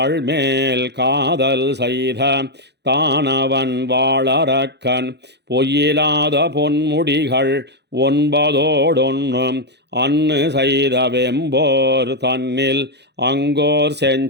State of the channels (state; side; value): late; left; 0.50 ms